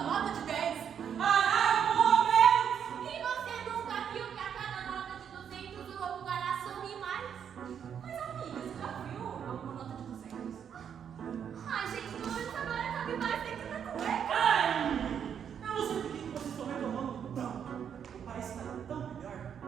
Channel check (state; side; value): quieter; left; 8.1 dB